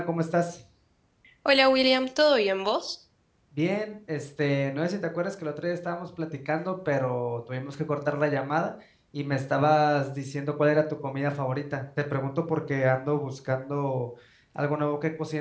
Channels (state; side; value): identical; both; correlation 1.00